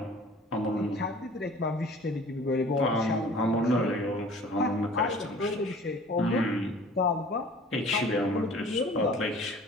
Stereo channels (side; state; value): both; normal; correlation 0.47